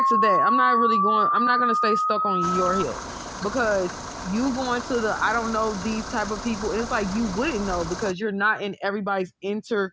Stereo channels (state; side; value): identical; both; correlation 1.00